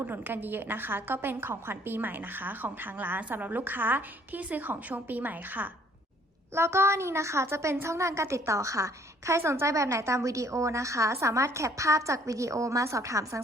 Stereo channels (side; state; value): both; normal; correlation 0.61